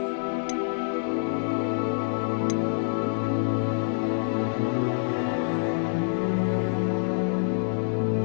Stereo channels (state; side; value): silent; right; 61 dB below the other